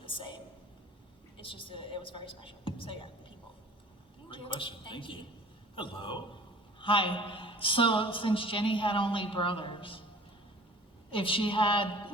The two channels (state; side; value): normal; both; correlation 0.46